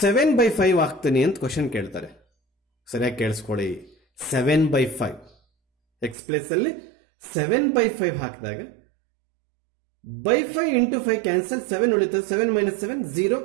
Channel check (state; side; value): drops out; left; at 6.2 s